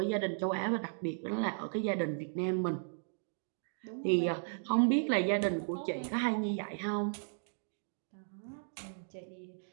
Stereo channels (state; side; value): silent; left; digital silence